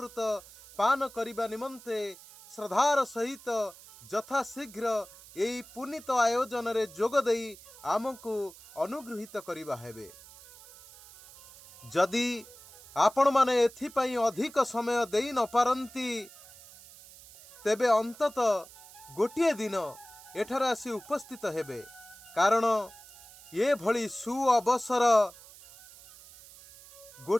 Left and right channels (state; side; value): noise; right; hiss, 20 dB below the sound